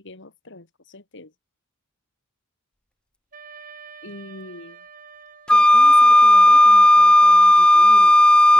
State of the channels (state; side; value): normal; both; correlation 0.93